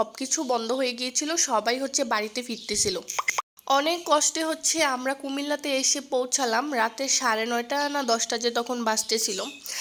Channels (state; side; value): identical; both; correlation 1.00